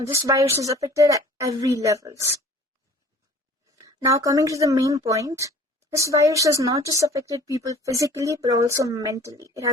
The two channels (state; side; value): normal; both; correlation 0.49